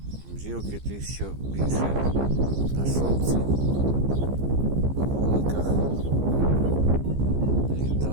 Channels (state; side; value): late; left; 15 ms